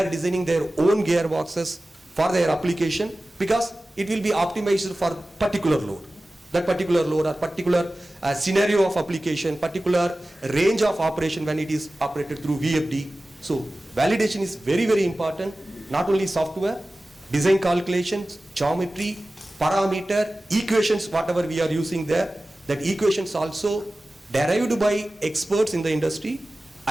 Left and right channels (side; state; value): both; normal; correlation 0.96